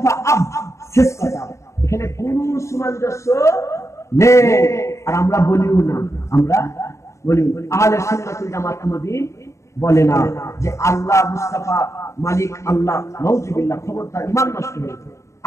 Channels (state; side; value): late; right; 0.14 ms